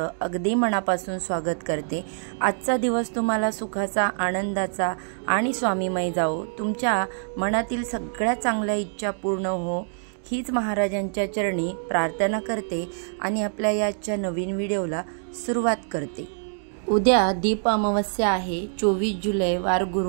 अगदी मनापासून स्वागत करते। आजचा दिवस तुम्हाला सुखाचा, आनंदाचा आणि स्वामीमय जाओ। तुमच्या मनातील सगळ्या चांगल्या इच्छा पूर्ण हो, हीच महाराजांच्या चरणी प्रार्थना करते आणि आपल्या याच्या नवीन व्हिडिओला सुरुवात करते। उद्या दीप अमावस्या आहे, 24 जुलै वार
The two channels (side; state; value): left; silent; digital silence